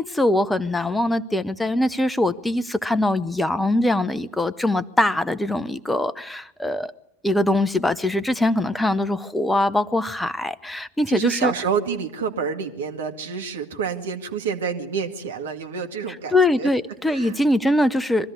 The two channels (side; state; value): both; normal; correlation 0.73